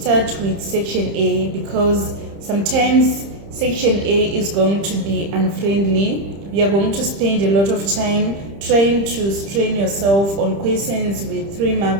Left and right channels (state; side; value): late; left; 30 ms